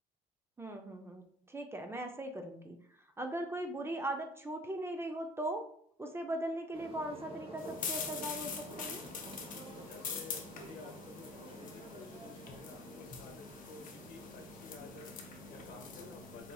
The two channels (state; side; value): normal; both; correlation 0.50